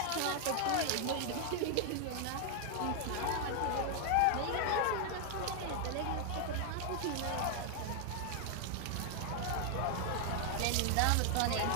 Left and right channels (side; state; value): both; different; correlation 0.00